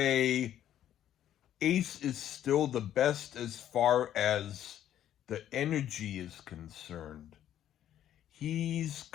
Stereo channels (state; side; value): quieter; right; 11.2 dB